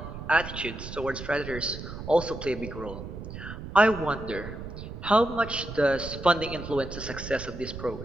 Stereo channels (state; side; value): noise; right; rumble, 10 dB below the sound